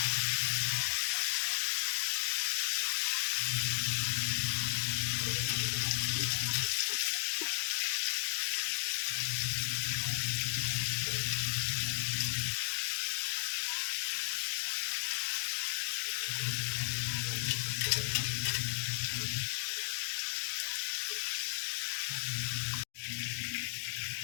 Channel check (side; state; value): right; silent; digital silence